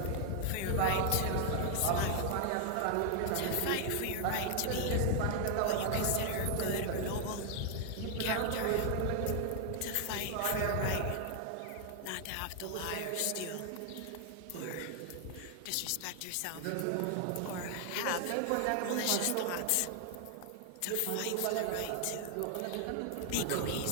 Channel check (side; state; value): both; different; correlation 0.00